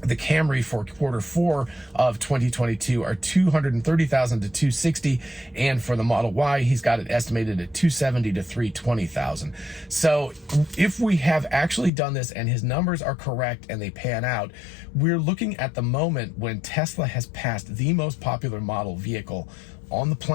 the Camry for quarter four of 2022 are 230,000 to 260, and for the Model Y, he's got it estimated at 270 to 320,000. So if we have actually done this and his numbers are correct and they pan out, we're looking at the moment when Tesla has passed the most popular model vehicle on the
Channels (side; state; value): right; drops out; at 11.9 s